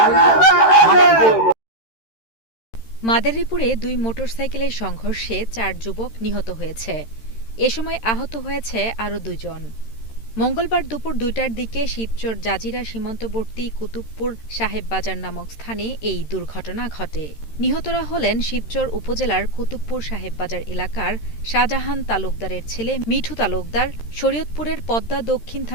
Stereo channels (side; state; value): right; late; 13 ms